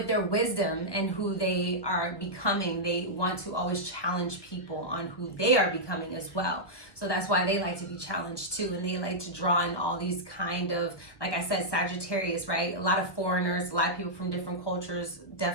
their wisdom and who they are becoming. They want to always challenge people on who they are becoming as well. So that's why they like to be challenged too. And they like to draw in all these kind of, like I said, Sagittarius, right? A lot of foreigners, a lot of people from different cultures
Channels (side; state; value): right; late; 1.2 ms